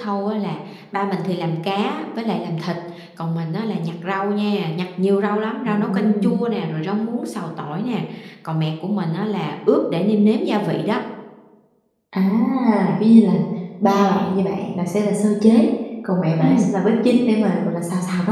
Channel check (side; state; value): both; identical; correlation 1.00